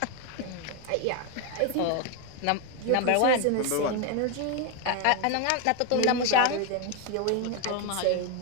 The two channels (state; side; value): different; both; correlation 0.02